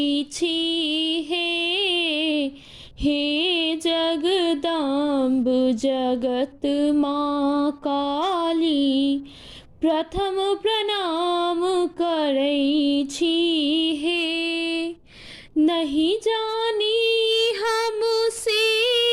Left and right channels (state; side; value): identical; both; correlation 1.00